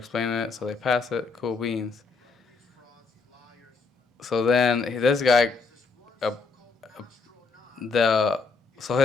it. So they pass it. Cool beans. So then this guy, so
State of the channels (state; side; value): quieter; right; 4.4 dB